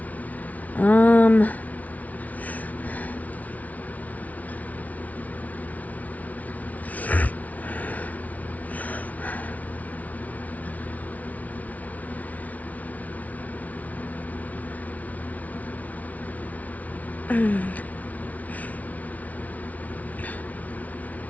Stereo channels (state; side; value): late; right; 0.071 ms